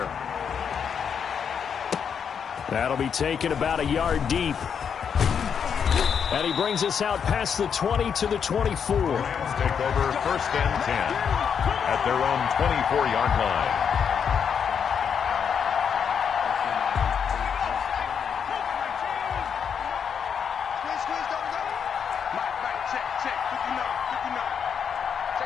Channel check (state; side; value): quieter; right; 7.2 dB